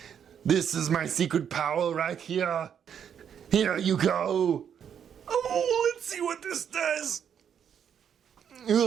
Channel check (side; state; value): left; quieter; 8.3 dB